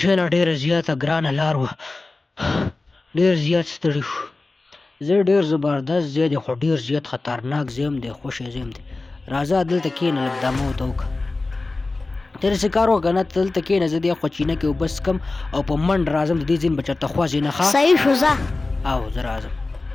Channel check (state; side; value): quieter; right; 3.4 dB